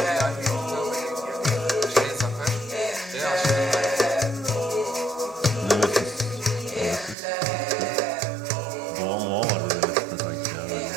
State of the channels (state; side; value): drops out; left; at 7.2 s